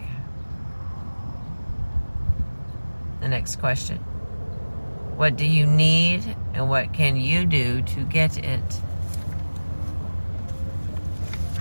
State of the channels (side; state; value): both; inverted; correlation -1.00